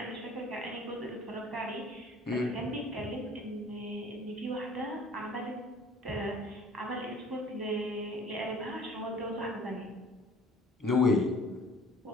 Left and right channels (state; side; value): normal; both; correlation 0.51